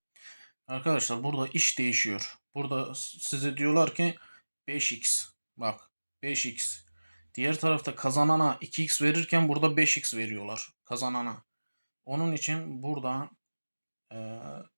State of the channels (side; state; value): both; inverted; correlation -1.00